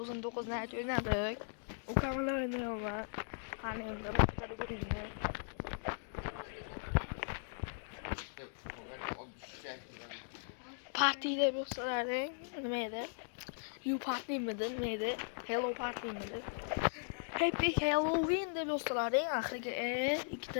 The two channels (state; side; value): silent; right; digital silence